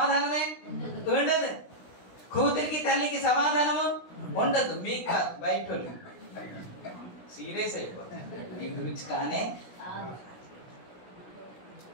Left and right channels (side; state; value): right; late; 16 ms